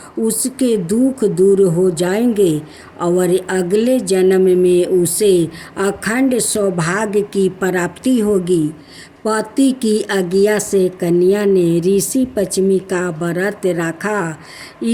उसके दुख दूर हो जाएंगे और अगले जन्म में उसे अखंड सौभाग्य की प्राप्ति होगी। पति की आज्ञा से कन्या ने ऋषि पश्चिमी का व्रत रखा।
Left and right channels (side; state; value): both; identical; correlation 1.00